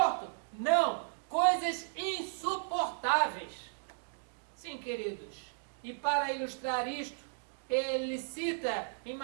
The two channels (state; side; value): silent; left; digital silence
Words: Não, coisas insuportáveis. Sim, queridos, e para ilustrar isto, ele cita em